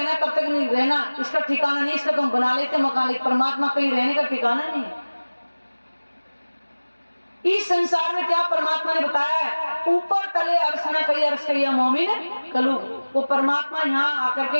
कब तक नहीं रहना इसका ठिकाना नहीं। इसका तुम बना लेते मकान, लेकिन परमात्मा कहीं रहने का ठिकाना नहीं। इस संसार में क्या परमात्मा ने बताया है? ऊपर तले अर्श न कई अर्श कई मोमिन कलू। वो परमात्मा यहाँ आकर के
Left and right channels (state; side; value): inverted; both; correlation -1.00